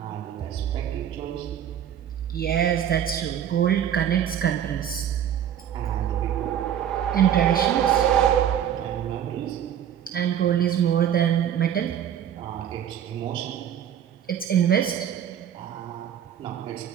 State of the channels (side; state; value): left; quieter; 9.7 dB